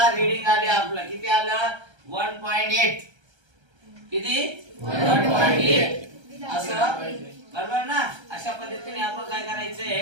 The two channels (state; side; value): late; left; 1.3 ms